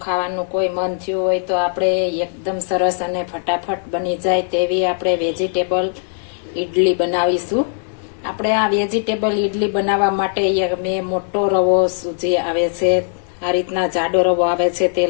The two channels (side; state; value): right; silent; 67 dB below the other